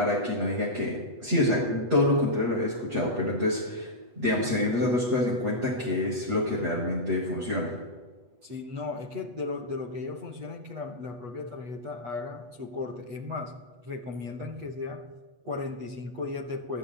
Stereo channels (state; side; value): late; left; 8.2 ms